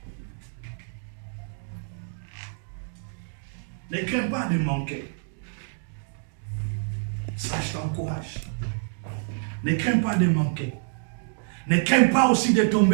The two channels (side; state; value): left; silent; digital silence